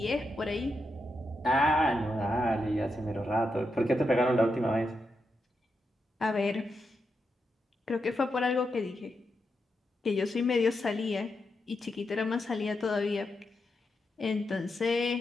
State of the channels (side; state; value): both; normal; correlation 0.85